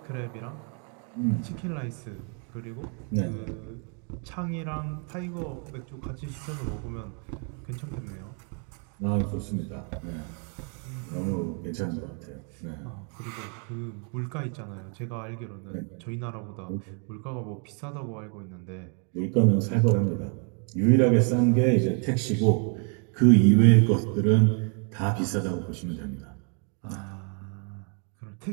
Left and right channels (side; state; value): left; quieter; 39.6 dB